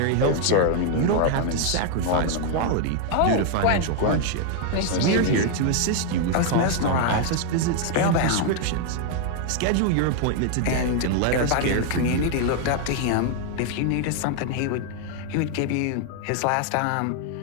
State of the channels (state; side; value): different; both; correlation 0.00